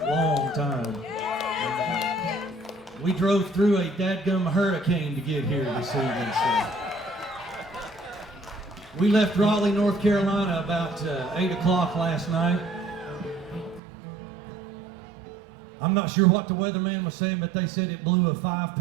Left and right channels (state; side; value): drops out; left; at 13.8 s